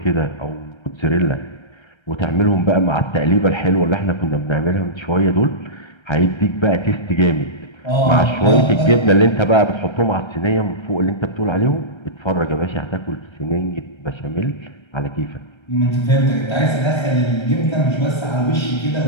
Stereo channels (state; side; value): late; right; 1.3 ms